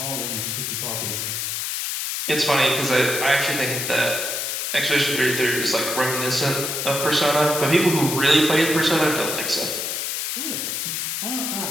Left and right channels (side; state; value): left; noise; hiss, 2 dB below the sound